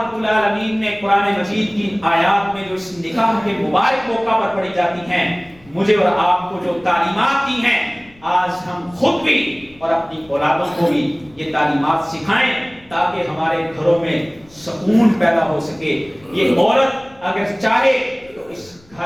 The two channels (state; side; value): noise; left; rumble, 27 dB below the sound